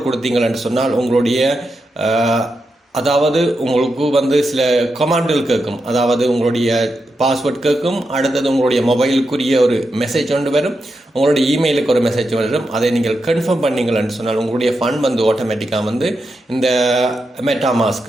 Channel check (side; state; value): both; normal; correlation 0.87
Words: கொடுத்தீங்கன்னு சொன்னால் உங்களுடைய அதாவது உங்களுக்கு வந்து சில கமாண்டுகள் கேட்கும், அதாவது உங்களுடைய பாஸ்வேர்ட் கேட்கும், அடுத்தது உங்களுடைய மொபைலுக்குரிய ஒரு மெசேஜ் ஒன்று வரும், உங்களுடைய இமெயிலுக்கு ஒரு மெசேஜ் வரும். அதை நீங்கள் கன்ஃபார்ம் பண்ணீங்கன்னு சொன்னால் உங்களுடைய ஃபண்ட் வந்து ஆட்டோமேட்டிக்காக வந்து இந்த